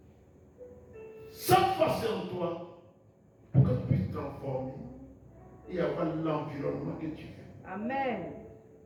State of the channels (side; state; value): both; identical; correlation 1.00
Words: Cette force est en toi pour que tu puisses transformer et avoir l'environnement que tu veux. Amen.